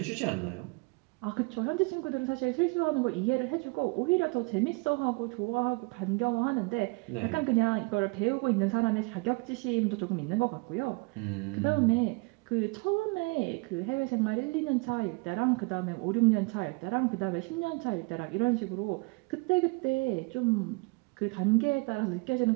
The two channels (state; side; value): quieter; left; 29.2 dB